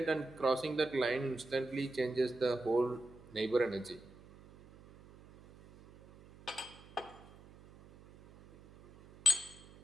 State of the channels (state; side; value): noise; right; hum, 22 dB below the sound